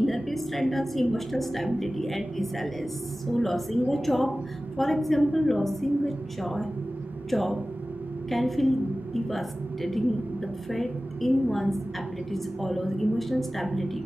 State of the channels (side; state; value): both; normal; correlation 0.96